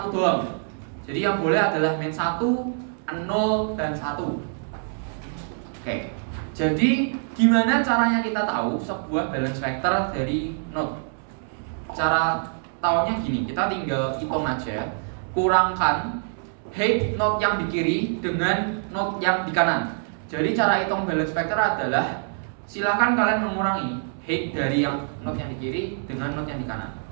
doang. Jadi yang boleh adalah min 1, 0, dan 1. Oke. Jadi gimana caranya kita tahu sebuah balance factor dari node? Cara taunya gini, kita tinggal hitung aja. Kurangkan head node yang di kiri dengan node yang di kanan. Jadi cara hitung balance factor adalah silakan kalian mengurangi head dari yang node yang di kiri dengan node yang di kanan.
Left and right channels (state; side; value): silent; left; 62 dB below the other